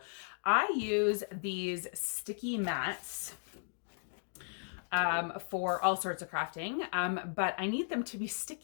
I use these sticky mats for all sorts of crafting, but I need them to be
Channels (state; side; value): silent; right; digital silence